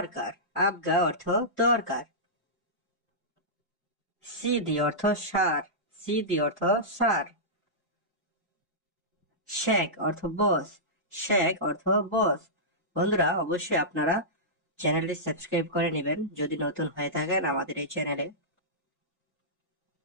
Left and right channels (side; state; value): both; normal; correlation -0.15